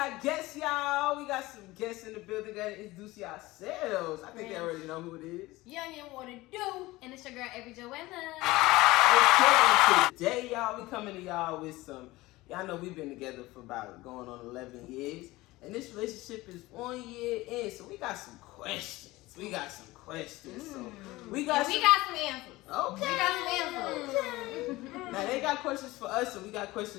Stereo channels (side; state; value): right; quieter; 19.5 dB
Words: guests, y'all. We got some guests in the building. Gotta introduce yourselves. I think they already know who it is. Young and what it do? And it's your girl, Every Joanna. Okay, today, y'all, we coming to y'all with some, y'all know we've been together for about going on 11 years. And this relationship is 1 year in, so we got some questions. So we got some answers. Okay. We got some answers. Okay. Now they got questions for us, so we got